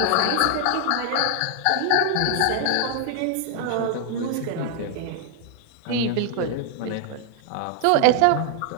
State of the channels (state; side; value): different; both; correlation 0.00